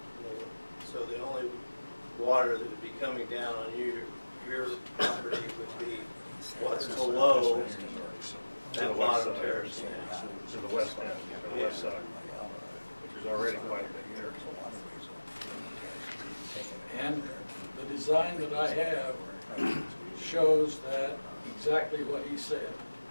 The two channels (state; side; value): inverted; both; correlation -1.00